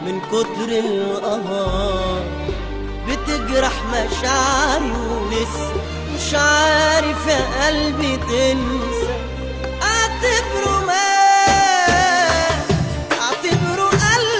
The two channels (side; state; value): both; identical; correlation 1.00